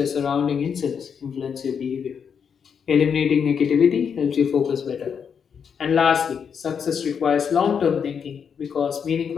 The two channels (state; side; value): quieter; right; 7.0 dB